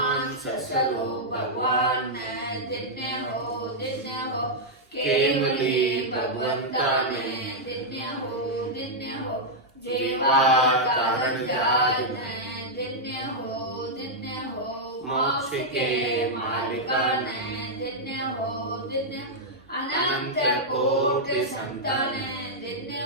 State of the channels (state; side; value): normal; both; correlation -0.05